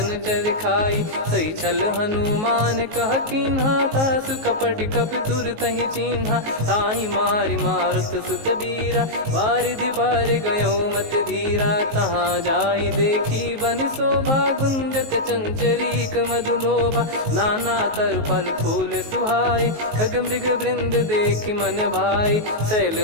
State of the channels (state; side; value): late; left; 19 ms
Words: चर खाई। सही छल हनुमान कह कीन्हा, तासु कपट कप तुर तहि चिन्हा। ताहि मारि मारुत सुत बीरा, वारिधि पार गयो मत धीरा। तहाँ जाई देखी बन शोभा, गुंजत चंचरीक मधुलोभा। नाना तर फल फूल सुहाए, खग मृग वृंद देख मन भाई। शैल